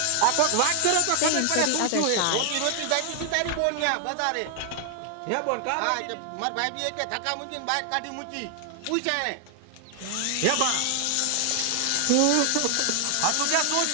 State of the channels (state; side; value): different; both; correlation 0.00